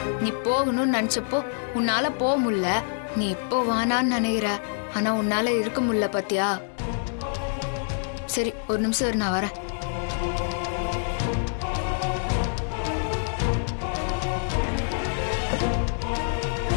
நீ போகணும்னு நினைச்சப்போ உன்னால போக முடியல. நீ இப்போ வானான்னு நினைக்கிற. ஆனா உன்னால இருக்க முடியல பாத்தியா? சரி ஒரு நிமிஷம் இரு, நான் வரேன்.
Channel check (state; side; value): silent; right; 57 dB below the other